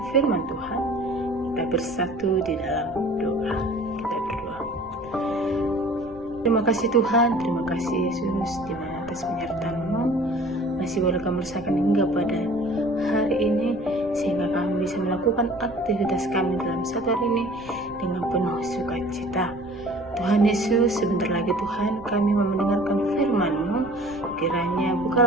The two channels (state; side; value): noise; right; rumble, 21 dB below the sound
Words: firman Tuhan, kita bersatu di dalam doa. Kita berdoa. Terima kasih Tuhan, terima kasih Yesus, di mana atas penyertaan-Mu masih boleh kami rasakan hingga pada hari ini, sehingga kami bisa melakukan aktivitas kami dalam satu hari ini dengan penuh sukacita. Tuhan Yesus, sebentar lagi Tuhan kami mau mendengarkan firman-Mu. Kiranya